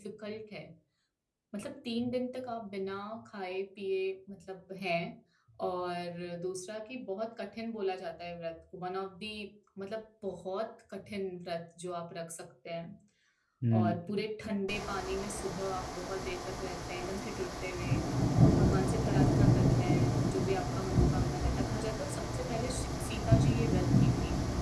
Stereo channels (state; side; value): identical; both; correlation 1.00